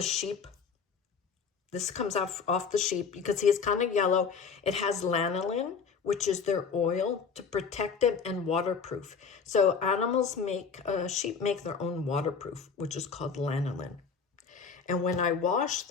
sheep. This comes off the sheep. You can see it's kind of yellow. It has lanolin, which is their oil to protect it and waterproof. So animals sheep make their own waterproof, which is called lanolin. And when I wash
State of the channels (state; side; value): quieter; right; 5.8 dB